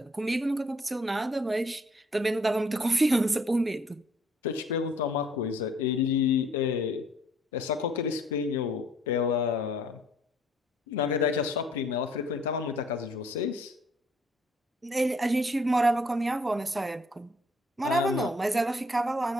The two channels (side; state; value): both; normal; correlation 0.62